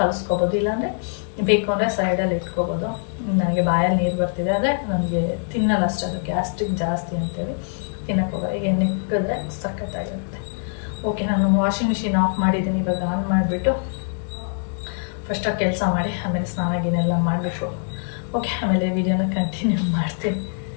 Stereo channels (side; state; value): right; silent; 63 dB below the other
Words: ಇಲ್ಲಾಂದರೆ ಬೇಕು ಅಂದರೆ ಸೈಡಲ್ಲಿ ಇಟ್ಕೊಬೋದು. ನನಗೆ ಬಾಯಲ್ಲಿ ನೀರು ಬರ್ತಿದೆ, ಆದರೆ ನನಗೆ ತಿನ್ನಲ್ಲ ಅಷ್ಟೇ, ಅದು ಗ್ಯಾಸ್ಟ್ರಿಕ್ ಜಾಸ್ತಿ ಅಂತೇಳಿ ತಿನ್ನಕ್ಕೆ ಹೋಗೋದು. ಈಗ ನಿಕ್ಕಿದ್ರೆ ಸಖತ್ತಾಗಿರುತ್ತೆ. ಓಕೆ, ನಾನು ವಾಷಿಂಗ್ ಮಿಷಿನ್ ಆಫ್ ಮಾಡಿದ್ದೀನಿ. ಇವಾಗ ಆನ್ ಮಾಡಿಬಿಟ್ಟು ಫಸ್ಟಾಗಿ ಕೆಲಸ ಮಾಡಿ ಆಮೇಲೆ ಸ್ನಾನ ಗಿನೆಲ್ಲ ಮಾಡಬೇಕು. ಓಕೆ, ಆಮೇಲೆ ವಿಡಿಯೋನ ಕಂಟಿನ್ಯೂ ಮಾಡ್ತೀನಿ.